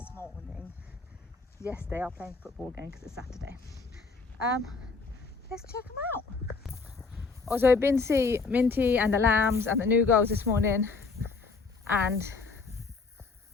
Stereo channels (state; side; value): quieter; right; 4.4 dB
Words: morning. Yes, they are playing football again because it's Saturday. Let's check them out. Also, I've been to see Minty and the lambs and the new girls this morning, and